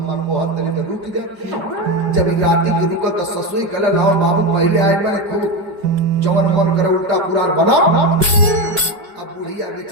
बहुत तरी तो रुक जा। जब राती की रुका तो ससुई कहला लाओ बाबू पहले आए मैंने खूब जवन मन करे उल्टा पुराण बना। अब बुढ़िया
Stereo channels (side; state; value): left; late; 5.0 ms